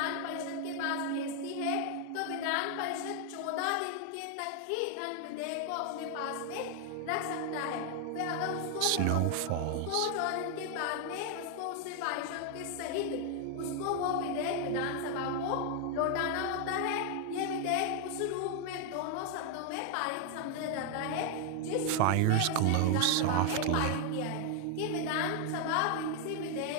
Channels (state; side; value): different; both; correlation 0.00